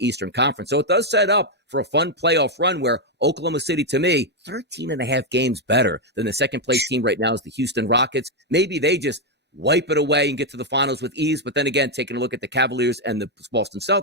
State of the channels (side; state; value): both; normal; correlation 0.02